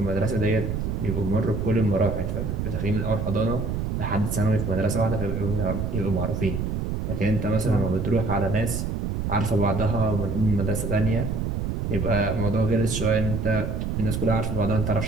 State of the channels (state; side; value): noise; right; rumble, 1 dB below the sound